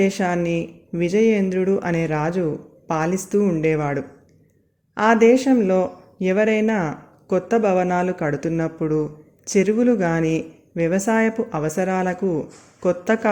విజయేంద్రుడు అనే రాజు పాలిస్తూ ఉండేవాడు. ఆ దేశంలో ఎవరైనా కొత్త భవనాలు కడుతున్నప్పుడు, చెరువులు కానీ వ్యవసాయపు అవసరాలకు కొత్త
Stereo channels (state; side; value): identical; both; correlation 1.00